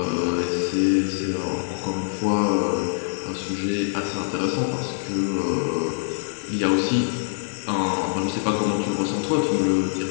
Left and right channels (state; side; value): silent; right; 62 dB below the other